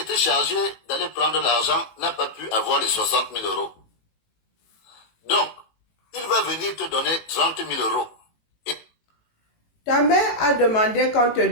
chargé d'aller prendre l'argent n'a pas pu avoir les 60 000 €. Donc, il va venir te donner 30 000 €. Et... Ta mère a demandé qu'on te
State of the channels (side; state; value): right; late; 18 ms